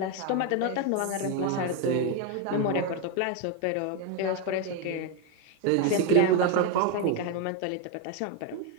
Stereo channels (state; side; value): different; both; correlation 0.02